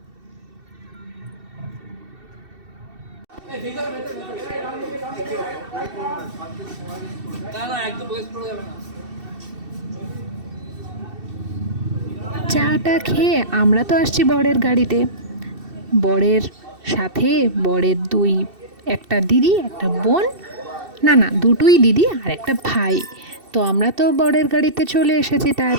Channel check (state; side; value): late; left; 2.7 ms